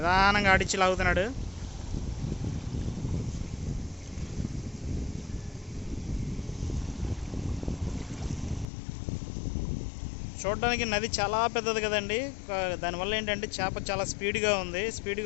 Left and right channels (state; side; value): drops out; right; at 8.7 s